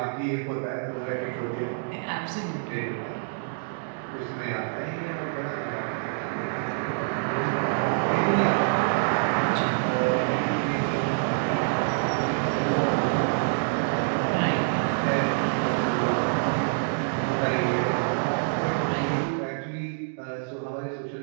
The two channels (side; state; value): left; silent; digital silence